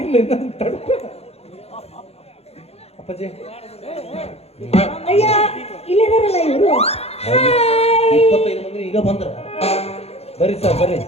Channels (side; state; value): right; late; 0.30 ms